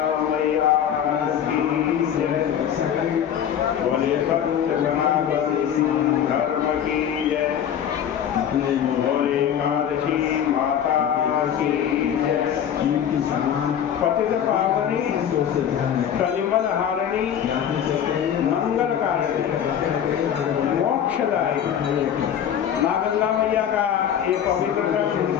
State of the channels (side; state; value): right; quieter; 9.3 dB